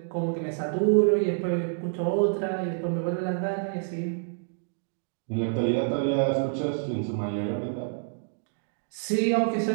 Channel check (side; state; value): left; silent; digital silence